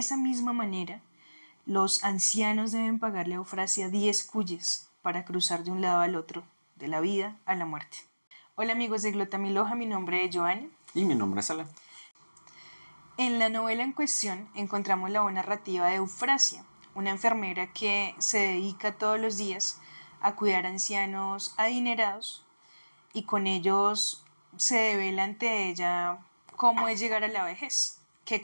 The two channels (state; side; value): inverted; both; correlation -1.00